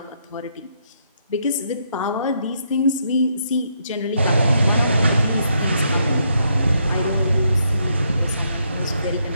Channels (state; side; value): inverted; both; correlation -0.76